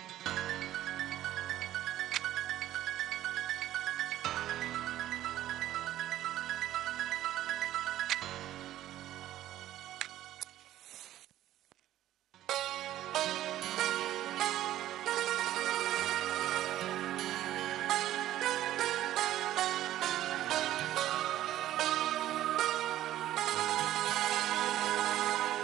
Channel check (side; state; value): left; quieter; 13.5 dB